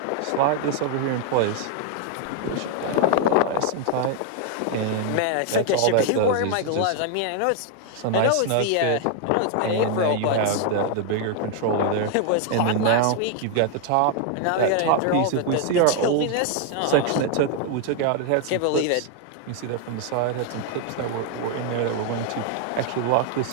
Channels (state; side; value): different; both; correlation 0.00